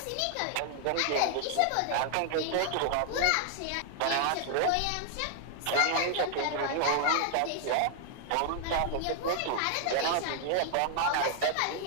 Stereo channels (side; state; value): both; different; correlation 0.00